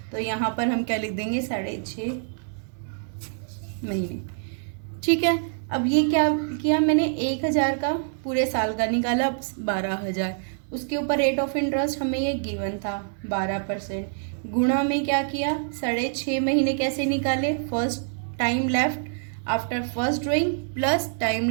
तो यहाँ पर हम क्या लिख देंगे? 6.5 महीने। ठीक है, अब ये क्या किया मैंने? 1,000 का पूरे साल का निकाला 12,000। उसके ऊपर रेट ऑफ इंटरेस्ट हमें ये गिवन था 12%। गुणा में क्या किया? 6.5 महीने कैसे निकाले? First time left after first drawing plus time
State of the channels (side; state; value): left; silent; 60 dB below the other